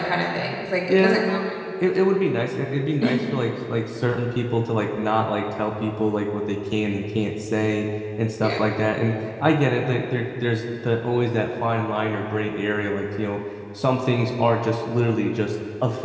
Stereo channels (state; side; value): identical; both; correlation 1.00